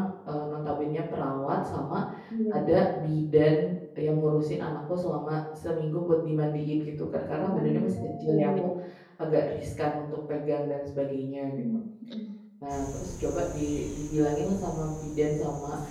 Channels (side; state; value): both; identical; correlation 1.00